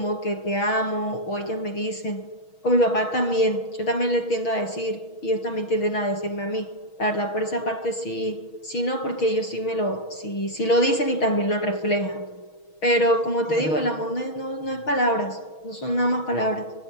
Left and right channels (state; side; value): late; right; 6.3 ms